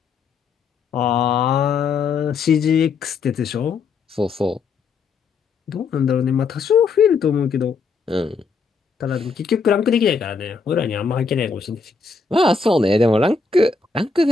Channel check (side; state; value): right; quieter; 4.8 dB